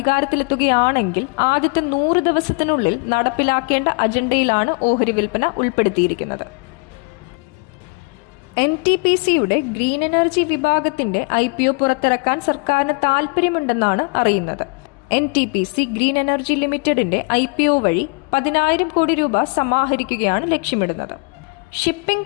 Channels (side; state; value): right; quieter; 31.5 dB